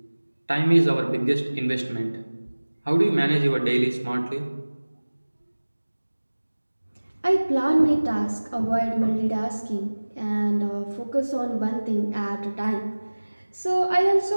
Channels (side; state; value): both; inverted; correlation -1.00